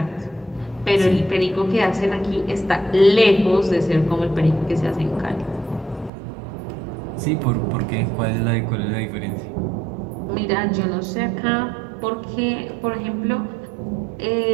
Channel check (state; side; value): drops out; left; at 6.1 s